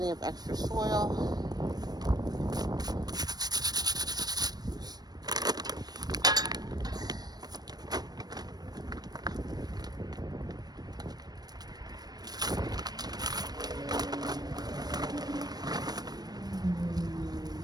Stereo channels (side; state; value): left; late; 0.19 ms